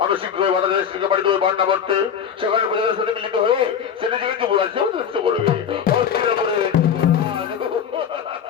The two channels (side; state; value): right; quieter; 8.0 dB